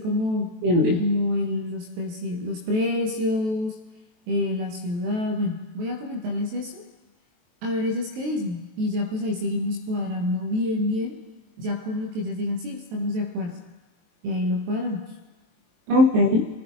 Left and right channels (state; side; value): late; left; 23 ms